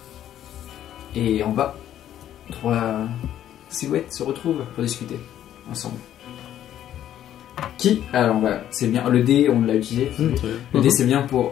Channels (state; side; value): quieter; right; 11.3 dB